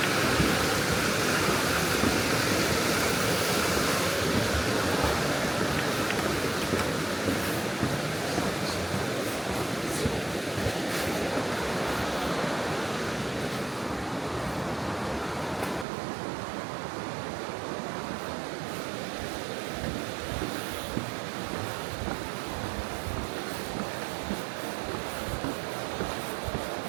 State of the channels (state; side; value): drops out; left; at 15.9 s